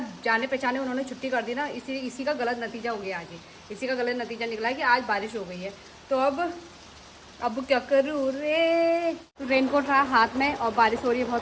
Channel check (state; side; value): identical; both; correlation 1.00